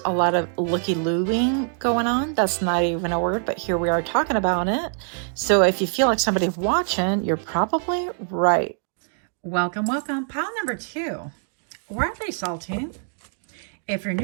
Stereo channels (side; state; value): left; silent; 59 dB below the other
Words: a lot of looky-looing going on. That's not even a word, but here we are talking about it. So if you feel like somebody's watching, you're probably right. Welcome, welcome. Pile number two. Why are they salty? If you're